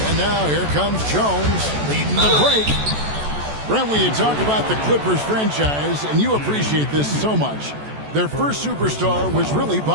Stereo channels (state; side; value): late; left; 14 ms